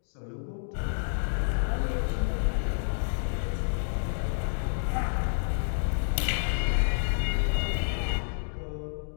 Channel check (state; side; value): silent; right; digital silence